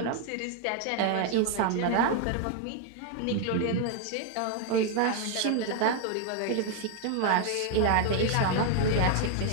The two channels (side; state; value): both; different; correlation 0.00